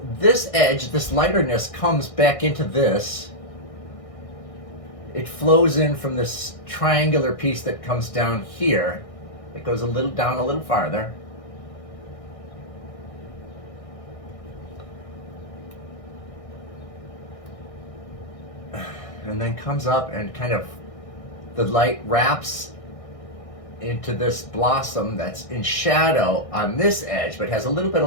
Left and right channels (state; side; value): late; right; 1.6 ms